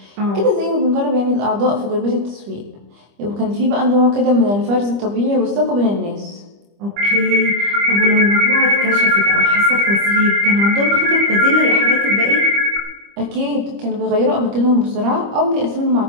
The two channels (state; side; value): late; left; 25 ms